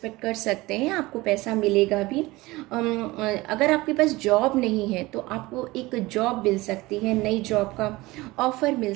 कर सकते हैं, आपको पैसा मिलेगा भी। अगर आपके पास जॉब नहीं है तो आपको एक जॉब मिल सकती है, नई जॉब का ऑफर मिल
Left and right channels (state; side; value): quieter; left; 20.5 dB